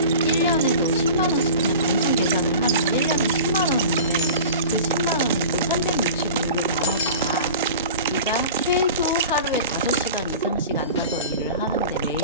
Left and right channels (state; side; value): inverted; both; correlation -0.37